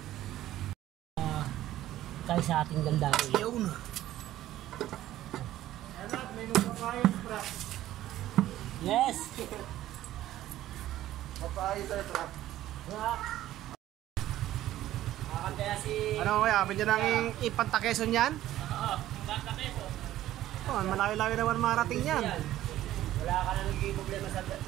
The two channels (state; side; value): quieter; left; 13.9 dB